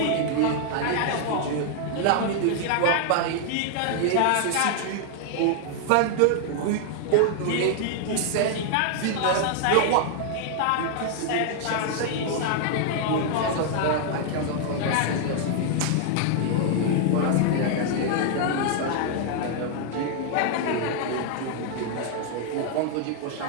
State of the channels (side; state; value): both; different; correlation 0.00